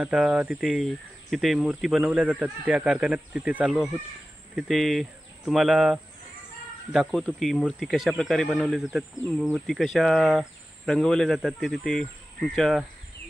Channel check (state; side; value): normal; both; correlation 0.95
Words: तिथे मूर्ती बनवल्या जातात, त्या कारखान्यात तिथे चाललो आहोत. तिथे तुम्हाला दाखवतो की मूर्ती कशा प्रकारे बनवल्या जातात, मूर्ती कशा रंगवल्या जातात, ते तिथे